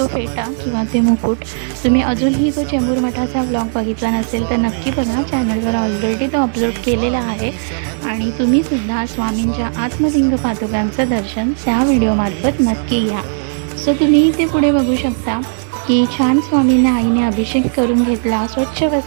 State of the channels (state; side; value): silent; left; digital silence